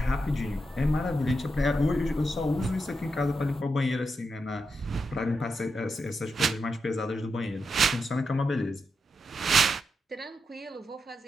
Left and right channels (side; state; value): both; normal; correlation 0.85